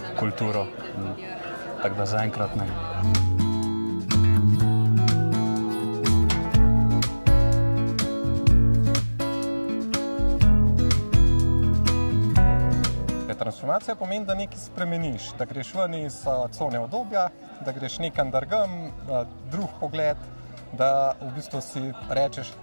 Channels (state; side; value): inverted; both; correlation -1.00